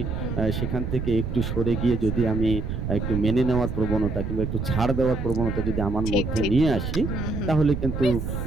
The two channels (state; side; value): noise; right; rumble, 3 dB below the sound